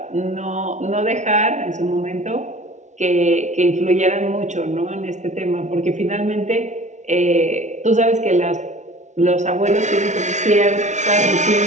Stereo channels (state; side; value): late; left; 0.34 ms